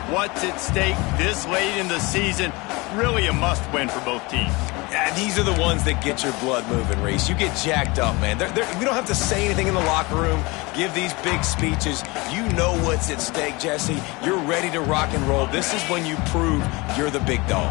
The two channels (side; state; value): right; quieter; 24.7 dB